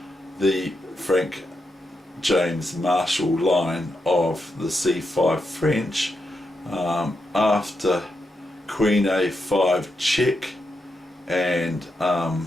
Frank James Marshall line of the C5 French, after Queen A5 check and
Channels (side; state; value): both; normal; correlation 0.84